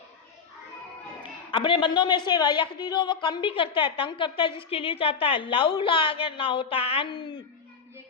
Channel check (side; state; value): right; quieter; 5.7 dB